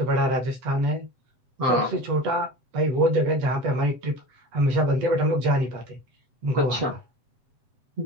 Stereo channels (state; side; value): late; left; 8.0 ms